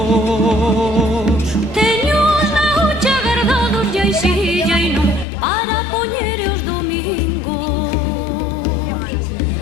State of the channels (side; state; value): right; drops out; at 5.2 s